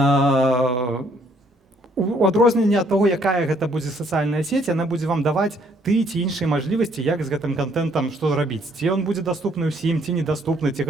У адрозненне ад таго, якая гэта будзе сацыяльная сеть, яна будзе вам даваць ты ці іншыя мажлівасці, як з гэтым контентам што зрабіць. Ці ён будзе даступны ўсім, ці недаступны, ці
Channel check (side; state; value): both; normal; correlation 0.66